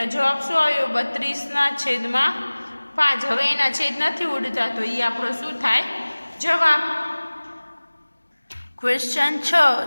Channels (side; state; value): both; inverted; correlation -1.00